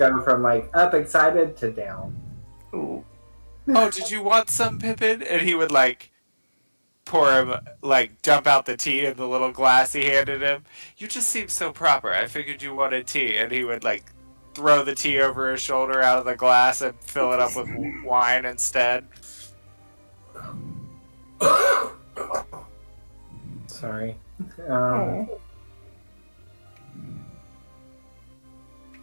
from like up excited to down. Ooh. Oh, did you want some, Pippin? And he would like pour him, like dump out the tea in the little glass he handed him. You just seem so proper. I figured you wanted tea, and he would like throw the tea over his shoulder out of the glass and fill it up with wine instead. Sorry. Oh.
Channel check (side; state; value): both; inverted; correlation -1.00